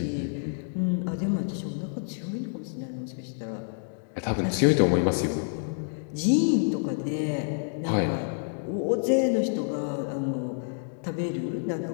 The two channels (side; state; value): right; silent; digital silence